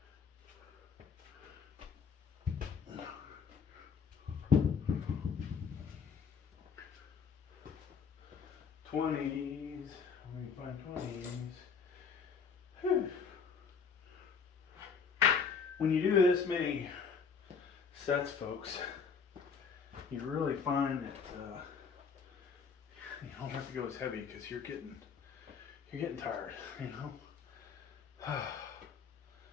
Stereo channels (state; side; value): quieter; right; 6.0 dB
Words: '20s. Let me find '20s. Whew. When you do this many sets, folks, you really find that you don't have to go as heavy because you're getting tired, Wow.